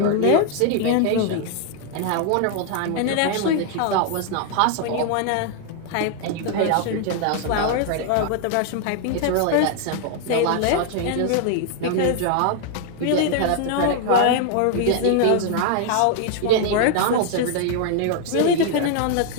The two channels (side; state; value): both; different; correlation 0.00